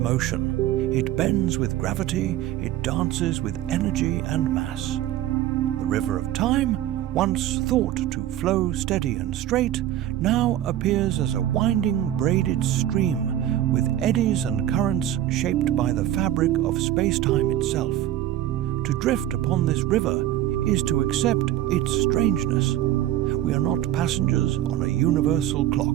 motion, it bends with gravity, it dances with energy and mass. The river of time, once thought to flow steady and straight, now appears as a winding braided stream with eddies and currents shaped by the fabric of space-time itself. To drift upon this river is to accept its strangeness. We are not passengers on a universal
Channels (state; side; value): quieter; left; 12.8 dB